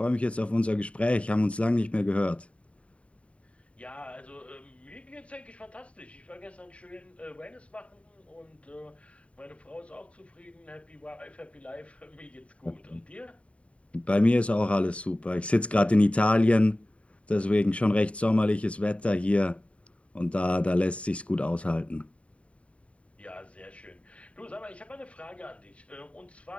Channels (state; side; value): late; right; 0.063 ms